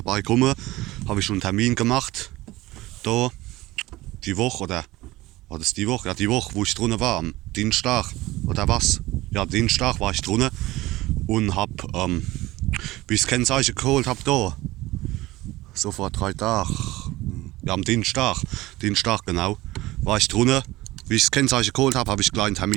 Habe ich schon einen Termin gemacht, da, die Woche, oder war das die Woche? Ja, die Woche, wo ich drinnen war, am Dienstag, oder was? Ja, Dienstag war ich drinnen und habe, wie ich das Kennzeichen geholt habe, da, so vor 3 Tagen, ja, am Dienstag genau, war ich drinnen. Wie ich das Kennzeichen geholt habe, habe ich gleich einen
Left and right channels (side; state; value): left; quieter; 18.6 dB